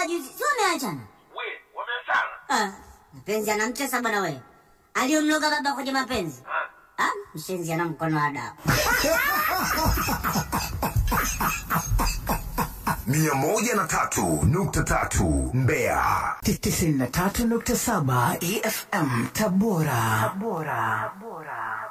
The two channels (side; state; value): both; identical; correlation 1.00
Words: juzi, sio umeachana? Wameachana? Mapenzi anamtesa bwana wewe. Aliyomloga baba kwenye mapenzi. Mshenzi ana mkono wa dawa. 103.3 Mbeya. 93.7 EFM Tabora.